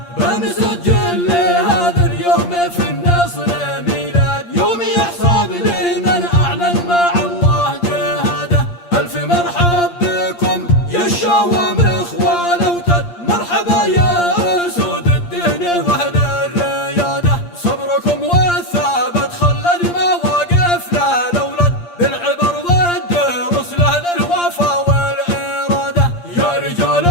بنسجل لهذا اليوم في النصر ميلاد يوم يحسب لمن أعلن مع الله جهاده. ألف مرحب بكم يا الشوام إخوان وتد، مرحبا يا أسود الدين وأهل الريادة. صبركم والثابت خلد مواقفنا الأولاد بالعبر والدروس لأهل الوفا والإرادة. يا رجال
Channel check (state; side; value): late; right; 8.6 ms